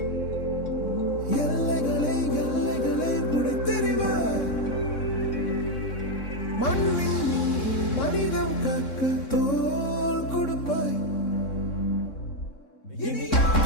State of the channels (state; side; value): late; right; 3.7 ms